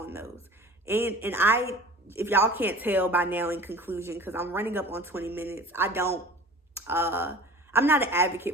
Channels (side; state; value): both; normal; correlation 0.42